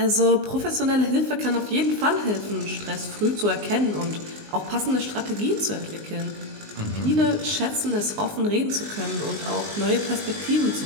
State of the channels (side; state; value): left; late; 19 ms